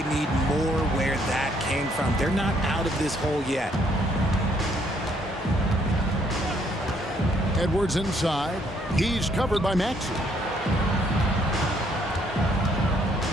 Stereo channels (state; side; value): normal; both; correlation 0.68